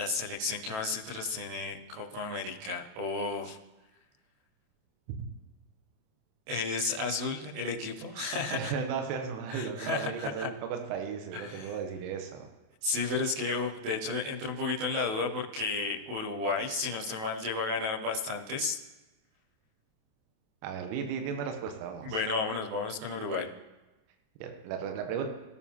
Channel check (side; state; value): left; late; 28 ms